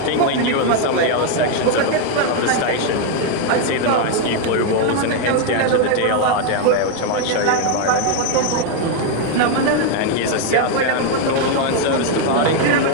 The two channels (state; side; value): different; both; correlation 0.01